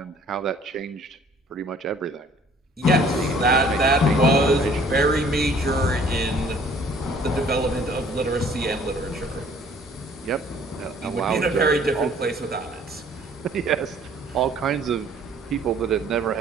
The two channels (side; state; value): both; normal; correlation 0.56